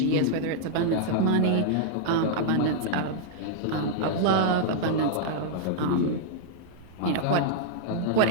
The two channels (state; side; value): different; both; correlation -0.01